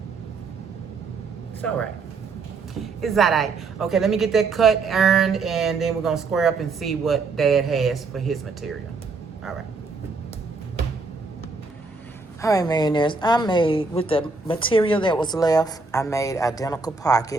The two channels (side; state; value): left; quieter; 4.1 dB